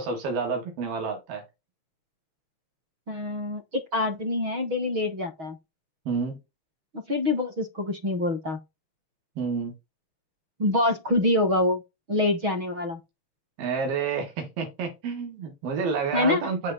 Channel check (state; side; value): late; left; 6.2 ms